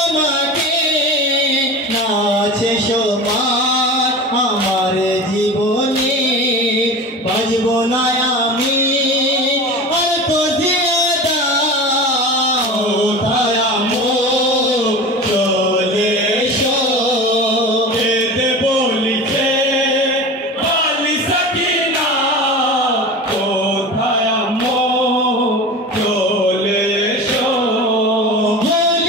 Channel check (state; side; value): normal; both; correlation 0.32